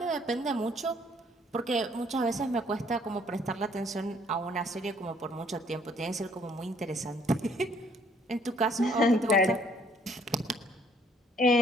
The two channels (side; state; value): both; normal; correlation 0.62